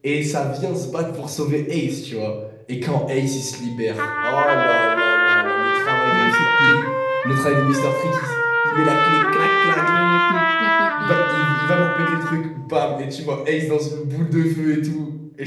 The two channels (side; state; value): both; identical; correlation 1.00